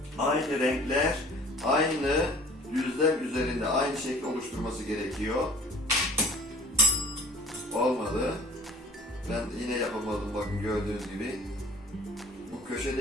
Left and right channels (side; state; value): both; normal; correlation 0.48